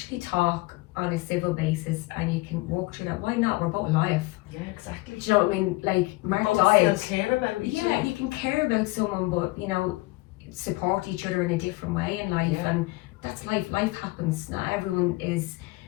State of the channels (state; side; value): quieter; right; 21.8 dB